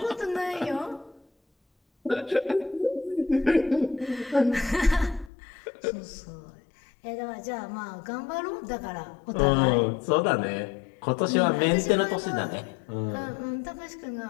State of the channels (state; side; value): drops out; right; at 5.3 s